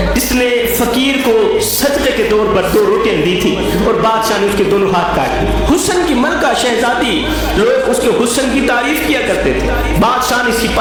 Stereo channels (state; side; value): identical; both; correlation 1.00